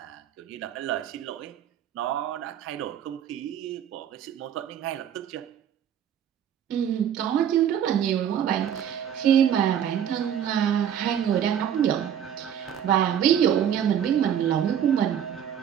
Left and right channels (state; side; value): quieter; left; 9.3 dB